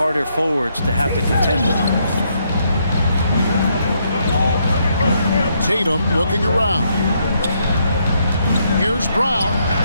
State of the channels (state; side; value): inverted; both; correlation -0.75